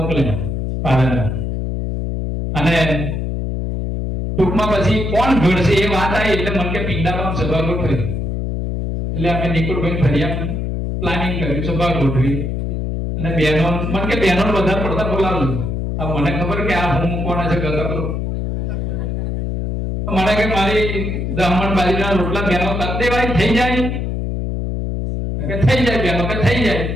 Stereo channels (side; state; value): left; noise; hum, 2 dB below the sound